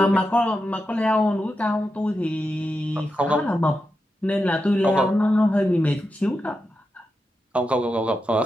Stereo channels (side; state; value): both; normal; correlation 0.88